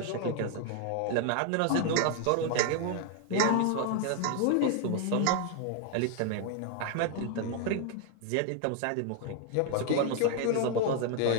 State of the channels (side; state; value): both; different; correlation 0.00